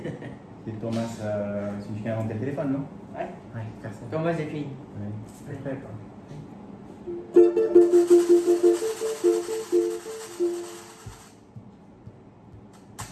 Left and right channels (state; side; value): identical; both; correlation 1.00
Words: C'est Thomas, c'est celui qui a inventé le téléphone, non? Ouais. Ouais, personne. Thomas Edison. Ouais. Je sais pas.